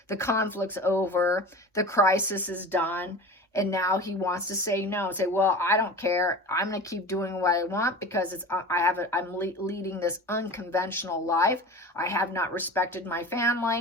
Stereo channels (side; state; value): both; normal; correlation 0.35